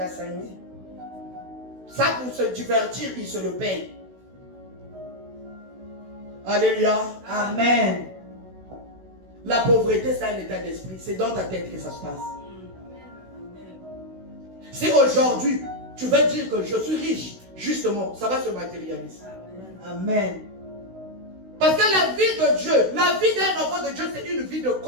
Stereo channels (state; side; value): late; left; 16 ms